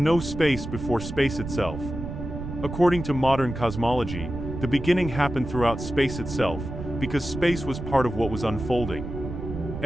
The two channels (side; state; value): right; noise; rumble, 8 dB below the sound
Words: space before space itself. According to modern cosmology, the beginning happened throughout space itself, because space was part of what was unfolding.